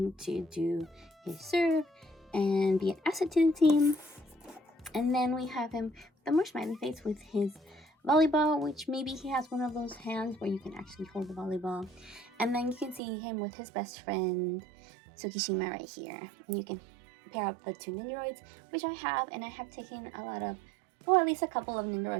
to do his serve and be an asset to the team. And then we have him with a more smiley face with his volleyball, which maybe he has one of those hands where you can actually hold the volleyball. And then you can see him with his best friend Tsukishima right here. And you can pair up the two Nendoroids, which I have, and I have taken a lot of, well, at least a couple of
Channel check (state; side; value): drops out; left; at 13.0 s